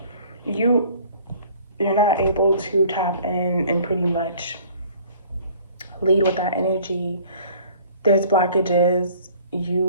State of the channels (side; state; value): both; inverted; correlation -0.52